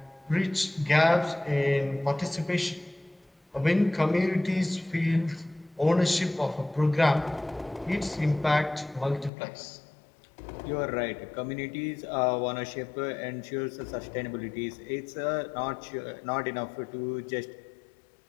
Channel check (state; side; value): drops out; right; at 9.3 s